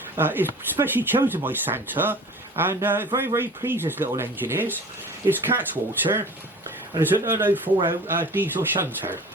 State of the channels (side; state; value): both; normal; correlation 0.41